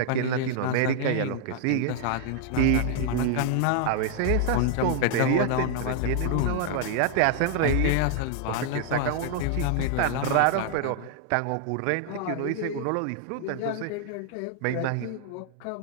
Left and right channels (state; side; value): different; both; correlation 0.00